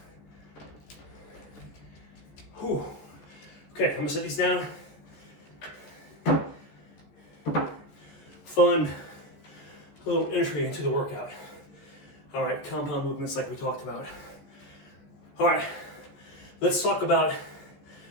Whew. Okay, I'm gonna set these down. Fun little entry into the workout. All right, compound movements like we talked about. All right, let's talk about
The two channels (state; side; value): late; right; 14 ms